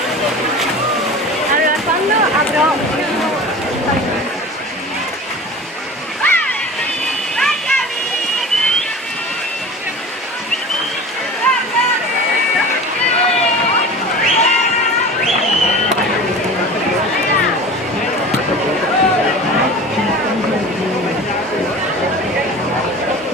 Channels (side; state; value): both; normal; correlation 0.37